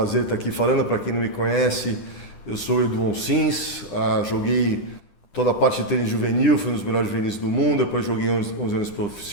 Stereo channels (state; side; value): late; right; 10 ms